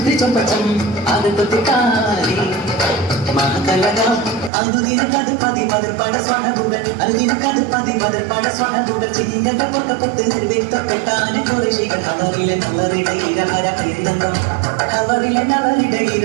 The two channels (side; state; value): left; drops out; at 4.5 s